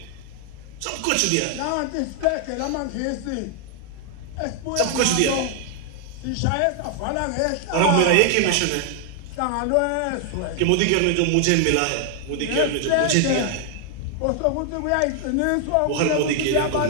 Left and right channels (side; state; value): both; different; correlation 0.00